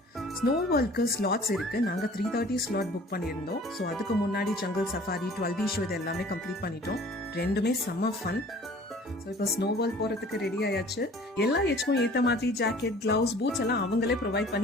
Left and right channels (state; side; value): normal; both; correlation 0.49